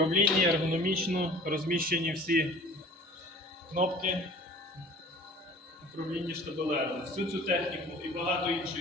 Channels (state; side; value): normal; both; correlation 0.46